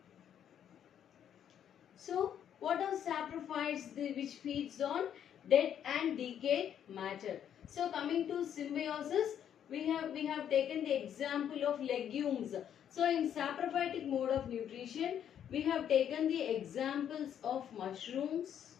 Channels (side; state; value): right; quieter; 9.4 dB